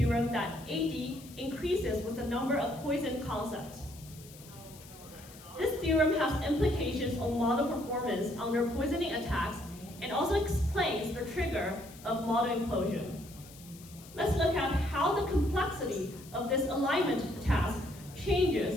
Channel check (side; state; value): left; noise; hiss, 20 dB below the sound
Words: that AD increases with the number of poison concepts. This theorem has implications on model performance under poisoning attacks and also explains the trigger of model implosion. Let's look at how the complexity of this alignment task